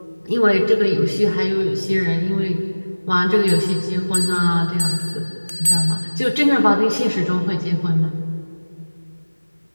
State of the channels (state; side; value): inverted; both; correlation -1.00